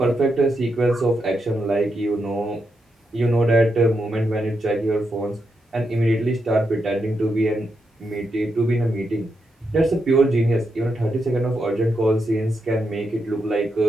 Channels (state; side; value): normal; both; correlation 0.83